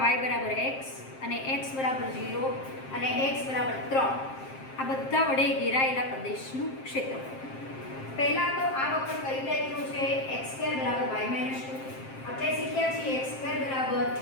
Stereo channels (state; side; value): late; right; 7.6 ms